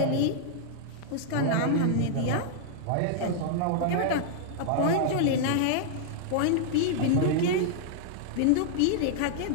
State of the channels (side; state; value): both; different; correlation -0.01